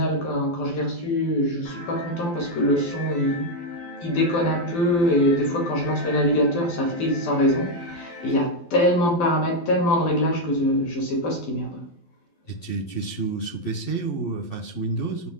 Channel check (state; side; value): late; right; 12 ms